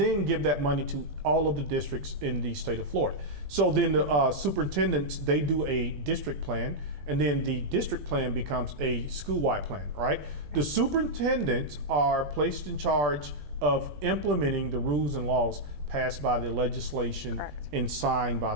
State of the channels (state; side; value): late; left; 20 ms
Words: give that money to all of the districts in the state of Florida. So then the superintendents, they do a district plan, and then the district plan becomes a school-wide plan, right? The superintendents are placed in charge of implementing the rules and laws passed by the legislation and signed by